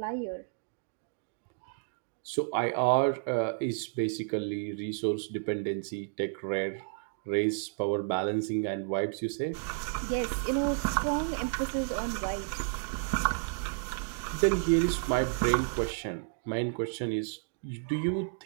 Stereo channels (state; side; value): silent; left; digital silence